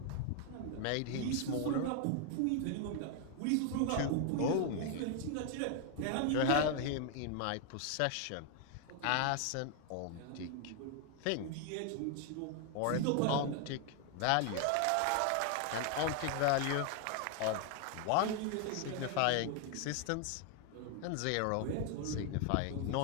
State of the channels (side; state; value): both; different; correlation 0.00